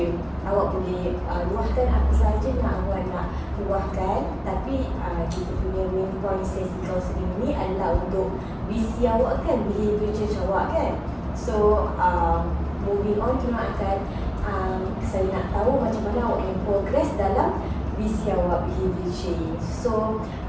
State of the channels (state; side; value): identical; both; correlation 1.00